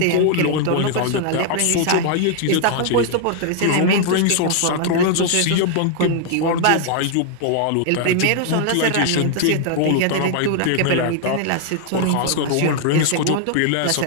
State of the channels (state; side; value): different; both; correlation 0.00